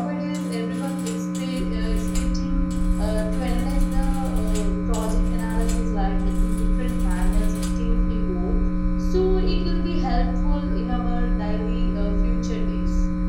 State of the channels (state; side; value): identical; both; correlation 1.00